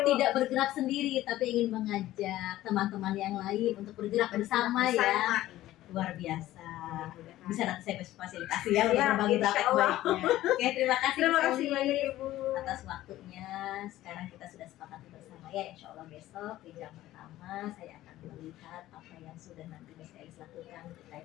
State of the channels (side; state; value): right; quieter; 15.0 dB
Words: tidak bergerak sendiri, tapi ingin mengajak teman-teman yang lain untuk bergerak bersama ya. Luar biasa. Bisa nanti saya fasilitasi ya untuk berbagi praktek baiknya. Oke, terima kasih banyak Ibu atas waktunya. Sekarang kita sudah sepakati bersama ya, insya Allah besok di jam pertama saya akan melihat apa yang sudah nanti Miss Elis lakukan